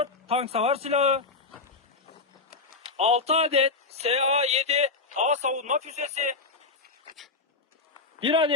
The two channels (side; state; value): right; quieter; 4.0 dB